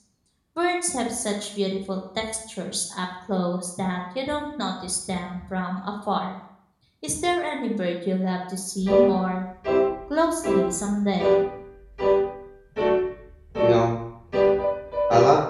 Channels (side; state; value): both; identical; correlation 1.00